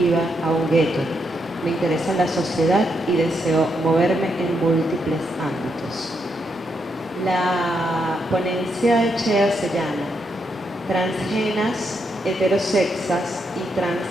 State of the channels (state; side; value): normal; both; correlation 0.80